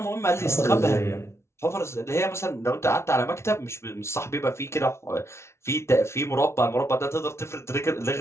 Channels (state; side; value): late; right; 0.13 ms